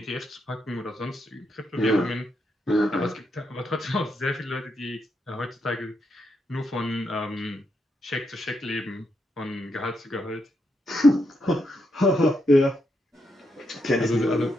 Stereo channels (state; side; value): normal; both; correlation 0.81